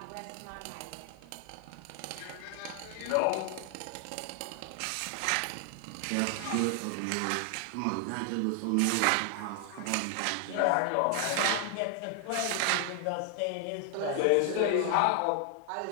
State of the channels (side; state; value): both; different; correlation 0.00